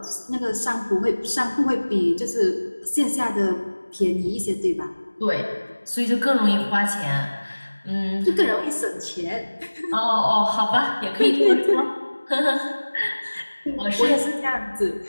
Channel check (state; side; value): inverted; both; correlation -1.00